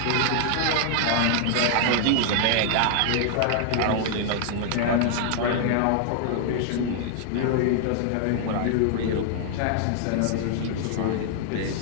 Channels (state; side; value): different; both; correlation -0.01